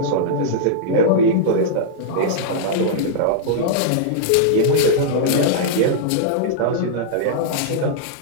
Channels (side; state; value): both; different; correlation -0.02